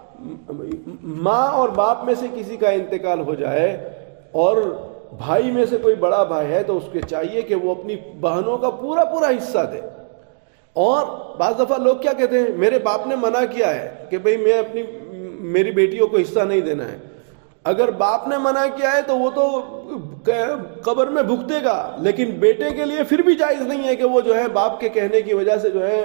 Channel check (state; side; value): silent; left; 66 dB below the other